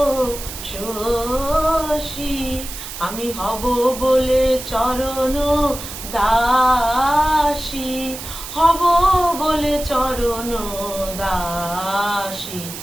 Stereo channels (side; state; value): right; noise; hiss, 10 dB below the sound